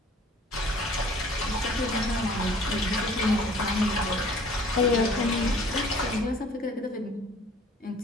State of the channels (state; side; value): normal; both; correlation 0.52